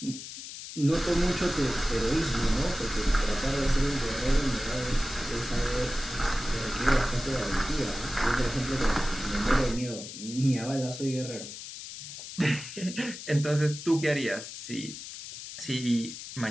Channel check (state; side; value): noise; left; hiss, 11 dB below the sound